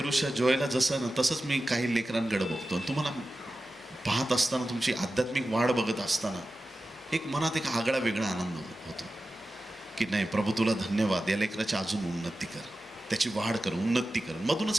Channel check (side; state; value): both; normal; correlation 0.94